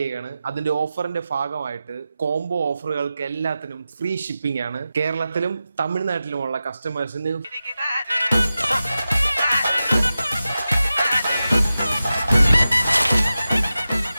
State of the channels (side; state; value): both; inverted; correlation -0.93